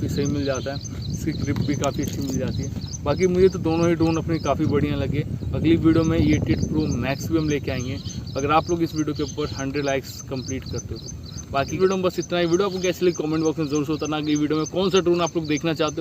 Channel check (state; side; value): identical; both; correlation 1.00